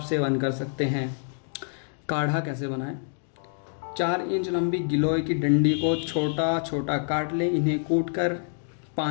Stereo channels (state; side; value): silent; right; digital silence